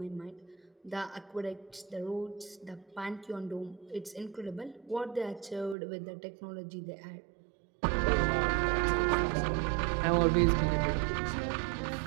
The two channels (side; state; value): left; drops out; at 5.8 s